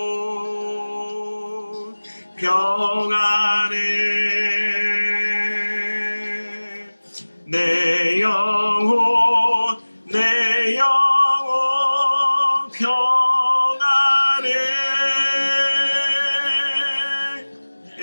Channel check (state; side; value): inverted; both; correlation -1.00